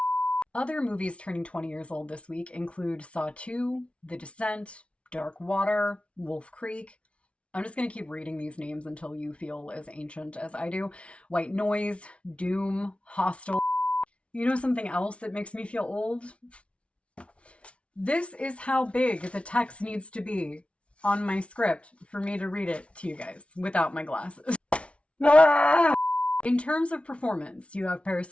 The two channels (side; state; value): right; late; 0.061 ms